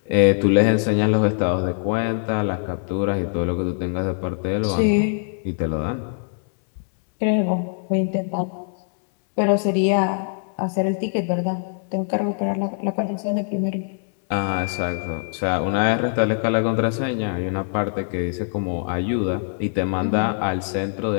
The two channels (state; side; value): silent; right; digital silence